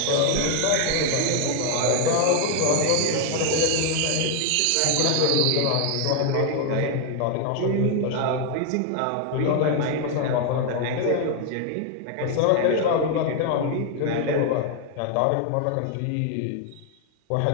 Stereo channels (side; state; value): both; different; correlation 0.01